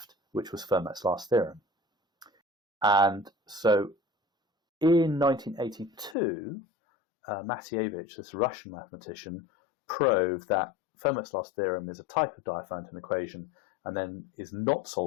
which was Fermat's last theorem. And so in 1982, Matievich, this Russian mathematician, proved that Fermat's last theorem is a type of Diophantine equation and then is not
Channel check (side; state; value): right; drops out; at 6.2 s